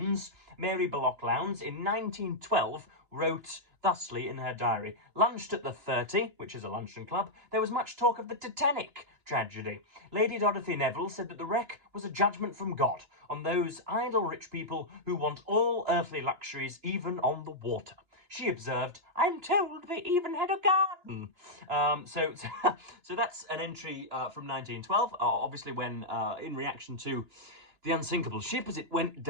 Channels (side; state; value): left; late; 2.9 ms